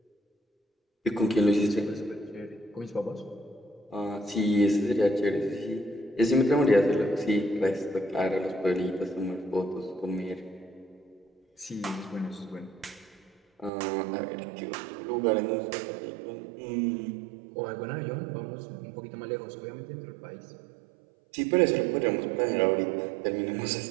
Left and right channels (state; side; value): drops out; left; at 13.7 s